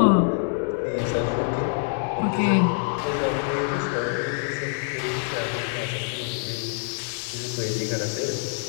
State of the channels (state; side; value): silent; right; digital silence